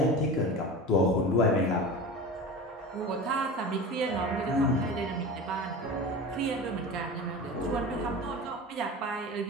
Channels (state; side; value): normal; both; correlation 0.32